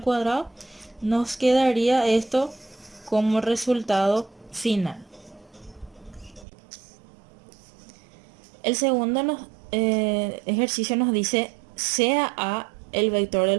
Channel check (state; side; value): drops out; left; at 6.5 s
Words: cuadrado, nos quedaría esto como resultado final. El segundo ejercicio nos dice sea A el vector del